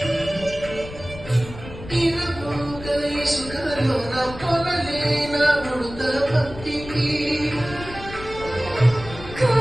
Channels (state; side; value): noise; left; rumble, 13 dB below the sound